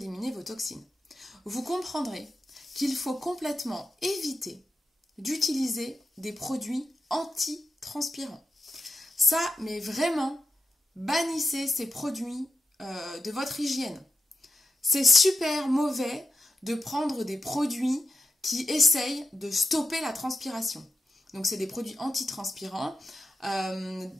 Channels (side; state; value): both; normal; correlation 0.88